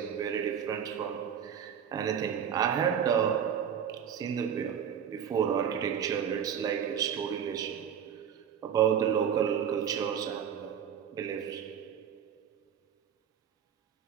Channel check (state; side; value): quieter; left; 8.4 dB